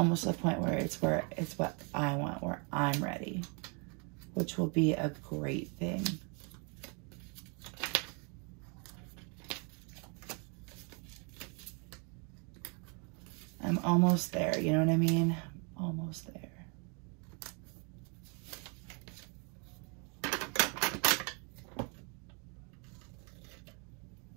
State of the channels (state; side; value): quieter; left; 35.7 dB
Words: at the point where it's what I want, where I'm ready, which will be a great thing. I'm almost there, you know what I mean? Almost there.